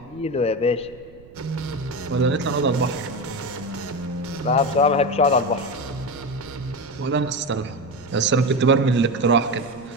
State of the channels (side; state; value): right; noise; rumble, 23 dB below the sound